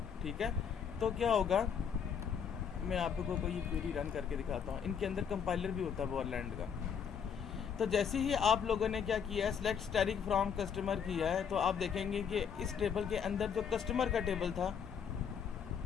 ठीक है। तो क्या होगा, मैं आप लोगों को ये क्वेरी रन करके दिखाता हूँ। इनके अंदर कंपाइलर भी होता है वॉरलैंड का। तो जैसे ही आप लोगों ने क्या किया है, सिलेक्ट स्टैरिक फ्रॉम कस्टमर किया है, तो आप देखेंगे कि इस टेबल के अंदर जो कस्टमर का टेबल था,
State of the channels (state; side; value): quieter; right; 7.3 dB